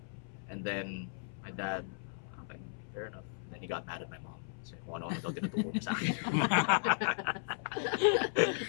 then my dad, okay, fair enough. And then he got mad at my mom. So kung ano daw tinuturo niya sa akin.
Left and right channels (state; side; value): silent; right; 54 dB below the other